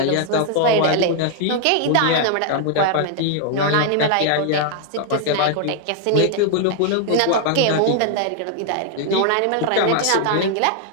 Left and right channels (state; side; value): different; both; correlation 0.00